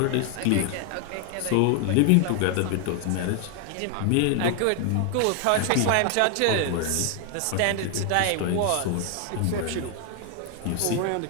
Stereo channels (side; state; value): both; different; correlation 0.01